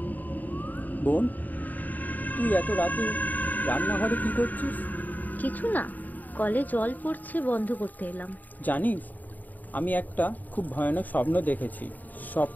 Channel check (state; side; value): late; right; 0.083 ms